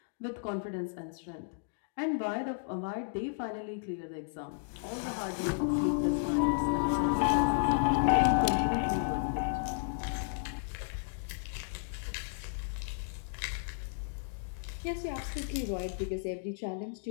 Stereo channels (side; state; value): right; silent; digital silence